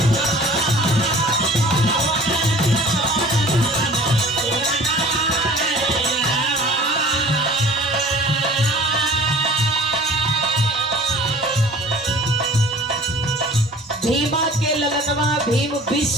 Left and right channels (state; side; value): normal; both; correlation 0.46